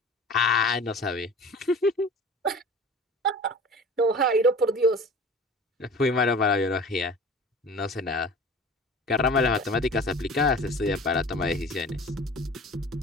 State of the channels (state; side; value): normal; both; correlation 0.41